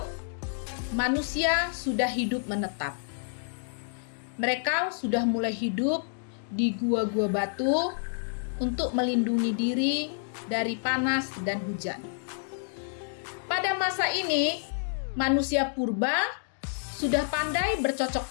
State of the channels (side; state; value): right; silent; digital silence